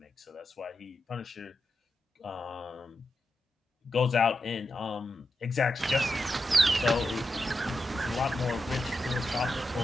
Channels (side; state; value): both; normal; correlation 0.88